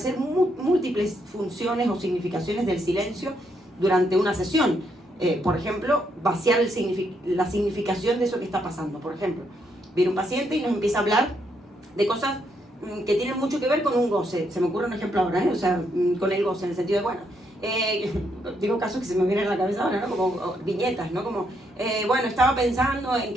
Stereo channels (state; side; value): normal; both; correlation 0.76